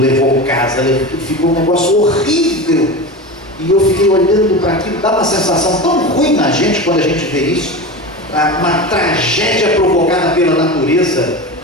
casa, ficou um negócio horrível. E eu fiquei olhando para aquilo, dá uma sensação tão ruim na gente quando a gente vê isso. Uma tragédia provocada pela natureza.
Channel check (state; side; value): normal; both; correlation 0.27